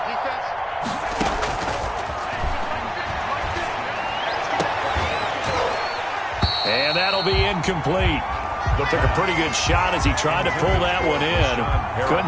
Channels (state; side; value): identical; both; correlation 1.00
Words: And that'll be incomplete. Took a pretty good shot as he tried to pull that one in.